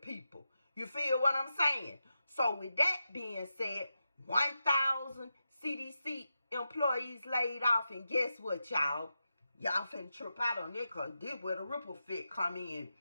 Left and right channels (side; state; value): both; inverted; correlation -0.89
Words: You feel what I'm saying? So with that being said, 1,000 CDC employees laid off, and guess what, y'all? Y'all finna trip out on it, because this where the ripple effect come in.